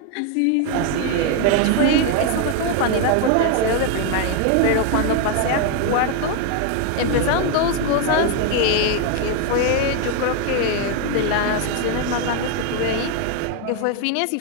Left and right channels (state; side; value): different; both; correlation 0.01